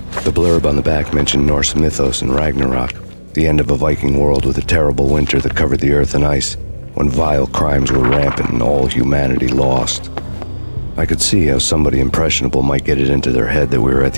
The blurb on the back mentioned Norse mythos and Ragnarok, the end of a Viking world with a terrible winter that covered the earth in ice, when vile crimes were rampant and all humanity lost. I could see how somebody impressionable might get it into their head that we were at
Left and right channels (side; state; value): both; inverted; correlation -1.00